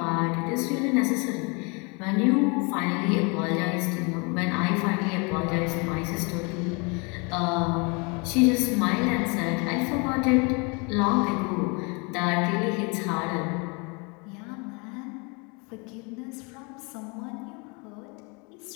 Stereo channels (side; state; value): right; quieter; 31.1 dB